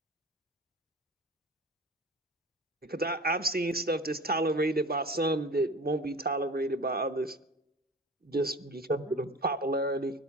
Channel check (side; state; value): both; normal; correlation 0.38